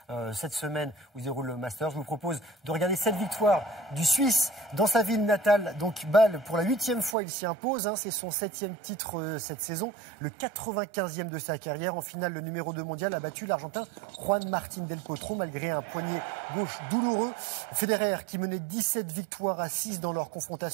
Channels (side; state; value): left; drops out; at 7.2 s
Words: cette semaine où se déroule le Masters. Je vous propose de regarder cette victoire du Suisse dans sa ville natale, donc Bâle. Pour la 8e fois, il s'y impose. C'est son 7e titre cette saison, le 95e de sa carrière. En finale, le numéro 2 mondial a battu l'Argentin Juan Martín del Potro, malgré un poignet gauche douloureux. Federer, qui menait 17 victoires à 6 dans leur